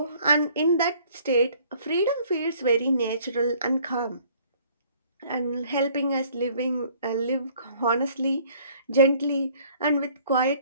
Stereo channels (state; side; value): inverted; both; correlation -0.57